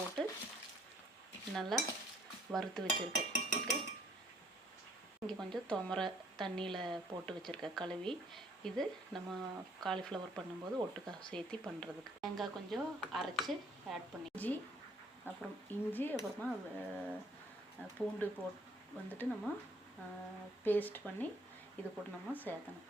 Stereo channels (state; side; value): normal; both; correlation 0.62